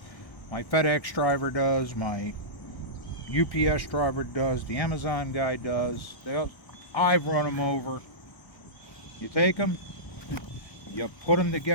my FedEx driver does, my UPS driver does, the Amazon guy does, I've run them over. You take them, you put them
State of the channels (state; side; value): late; right; 1.0 ms